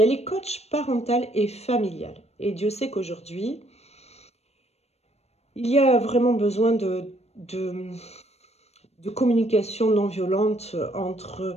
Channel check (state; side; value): late; right; 0.31 ms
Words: est coach parentale et familiale. Et Dieu sait qu'aujourd'hui, il y a vraiment besoin de communication non violente